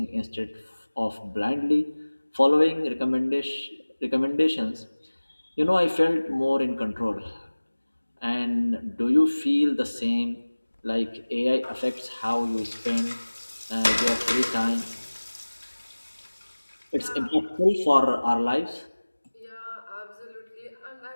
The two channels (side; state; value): both; inverted; correlation -1.00